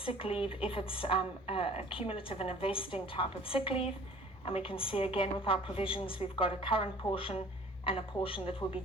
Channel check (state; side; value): normal; both; correlation 0.50